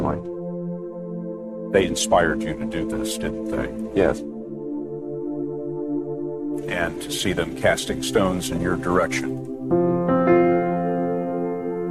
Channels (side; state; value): both; identical; correlation 1.00